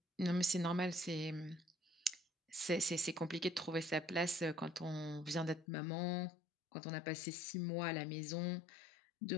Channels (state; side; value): drops out; right; at 5.7 s